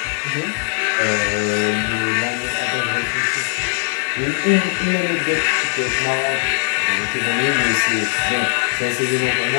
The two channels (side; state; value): right; silent; 66 dB below the other